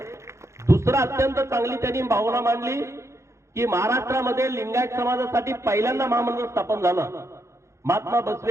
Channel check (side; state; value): left; late; 0.14 ms